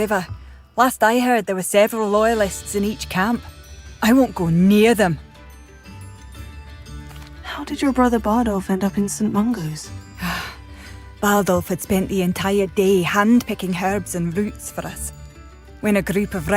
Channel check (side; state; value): both; identical; correlation 1.00